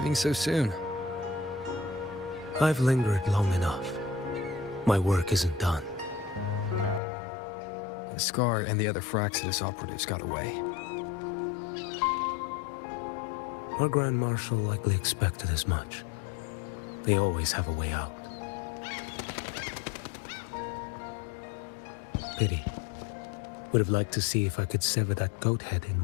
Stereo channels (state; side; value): drops out; right; at 7.0 s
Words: so soon? I've lingered long enough. My work isn't done. The Scar and the other Fraxidus operatives got away. Our Grand Marshal likely expected as much. They always have a way out. Pity. Would have liked to see if I could sever that goat head in